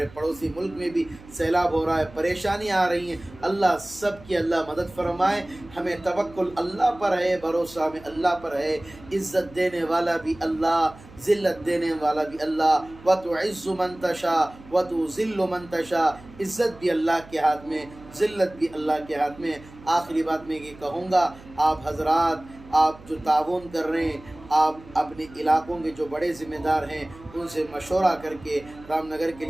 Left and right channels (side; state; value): right; noise; hum, 21 dB below the sound